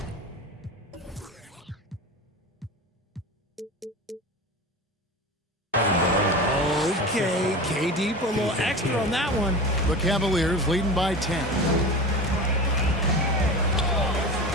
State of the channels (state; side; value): normal; both; correlation 0.30